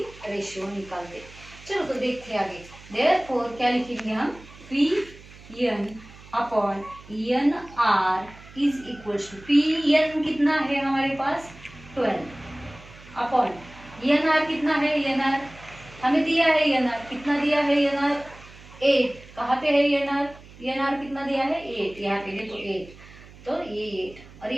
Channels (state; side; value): noise; right; hum, 20 dB below the sound